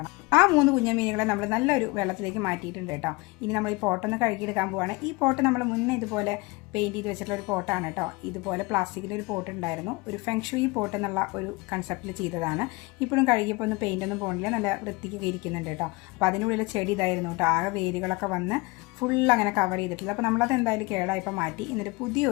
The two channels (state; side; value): quieter; right; 24.5 dB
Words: ആ 3 കുഞ്ഞ മീനുകളെ നമ്മൾ നല്ലൊരു വെള്ളത്തിലേക്ക് മാറ്റിയിട്ടുണ്ട് കേട്ടോ. ഇനി നമ്മൾ ഈ പോട്ടൊന്ന് കഴുകിയെടുക്കാൻ പോവുകയാണ്. ഈ പോട്ട് നമ്മൾ മുന്നേ ഇതുപോലെ പെയിൻറ്റ് ചെയ്ത് വെച്ചിട്ടുള്ള ഒരു പോട്ടാണ് കേട്ടോ. ഇതുപോലെ പ്ലാസ്റ്റിക്കിൻ്റെ ഒരു പോട്ട് ഉണ്ടായിരുന്നു. ഒരു ഫെങ്ഷുയി പോട്ട് എന്നുള്ള ഒരു കൺസെപ്റ്റിൽ ചെയ്തതാണ്. ഇപ്പോഴും കഴുകിയപ്പോൾ ഒന്ന് പെയിൻ്റൊന്നും പോകണില്ല, നല്ല വൃത്തിക്ക് ഇരിക്കുന്നുണ്ട് കേട്ടോ. അപ്പോൾ അതിനുള്ളിൽ ചെടി ഇതായിരുന്നു കേട്ടോ. ആകെ വേരുകളൊക്കെ വന്ന് ഫുൾ അങ്ങനെ കവർ ചെയ്തിട്ടില്ല. അപ്പോൾ നമ്മളത് എന്തായാലും കേടായപ്പോൾ മാറ്റി. എന്നിട്ട്